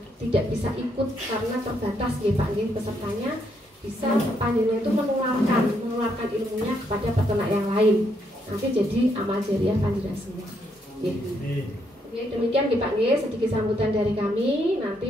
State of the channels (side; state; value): both; normal; correlation 0.75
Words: tidak bisa ikut karena terbatas ya Pak nggih pesertanya, bisa panjenengan itu menularkan ilmunya kepada peternak yang lain. Nanti jadi amal jariah panjenengan semua. Oke, demikian Pak nggih sedikit sambutan dari kami.